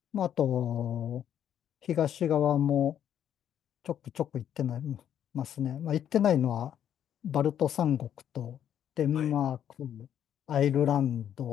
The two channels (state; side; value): quieter; right; 9.8 dB